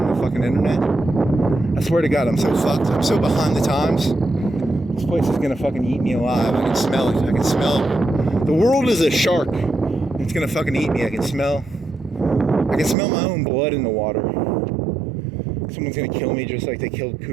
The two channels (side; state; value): left; drops out; at 13.0 s